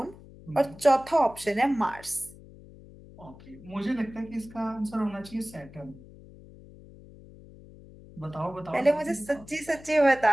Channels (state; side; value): noise; left; hum, 20 dB below the sound